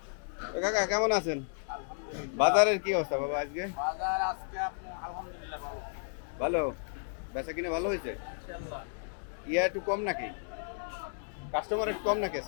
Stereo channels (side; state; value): right; silent; 56 dB below the other